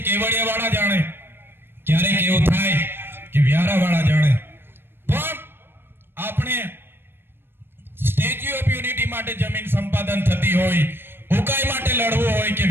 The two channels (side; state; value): left; late; 0.10 ms